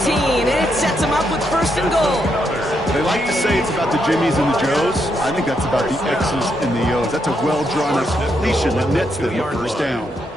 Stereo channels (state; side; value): normal; both; correlation 0.79